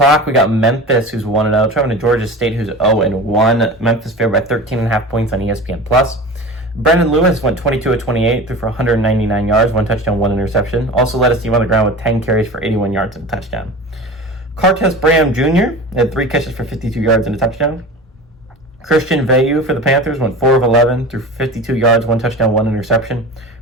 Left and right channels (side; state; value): both; normal; correlation 0.33